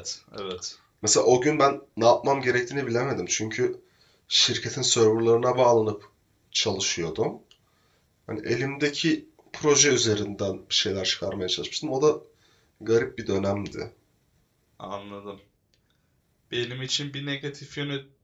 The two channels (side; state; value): both; identical; correlation 1.00